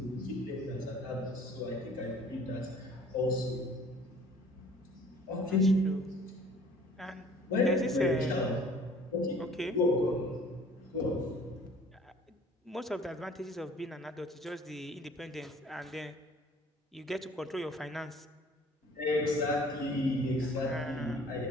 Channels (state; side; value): normal; both; correlation 0.52